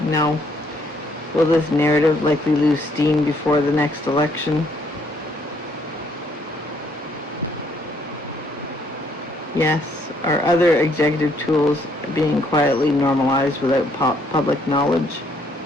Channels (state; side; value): normal; both; correlation 0.68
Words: No. Will this narrative likely lose steam before the next election? Yes. Are other executive tools being quietly normalized without public knowledge?